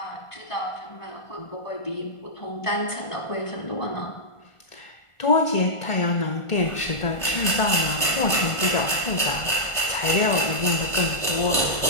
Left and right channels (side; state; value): right; late; 1.5 ms